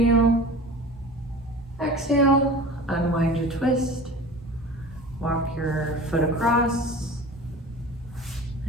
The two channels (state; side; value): normal; both; correlation 0.38